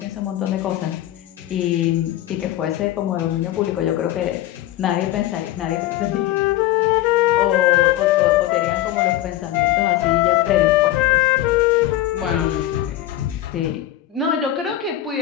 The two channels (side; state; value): right; quieter; 13.9 dB